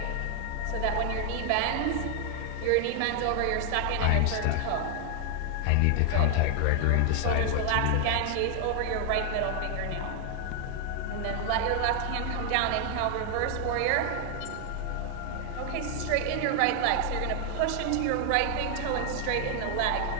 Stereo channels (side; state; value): both; different; correlation 0.00